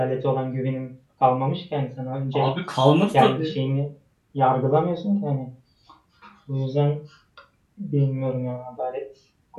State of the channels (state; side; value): identical; both; correlation 1.00